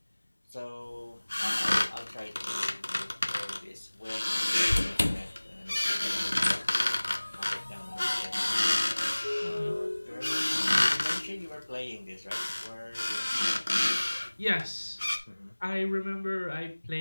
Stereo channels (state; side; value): inverted; both; correlation -1.00